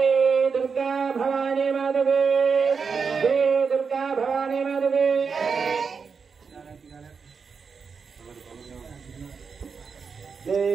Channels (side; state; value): left; quieter; 5.6 dB